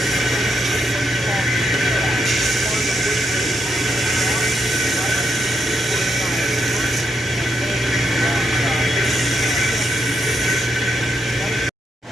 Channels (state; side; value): normal; both; correlation 0.80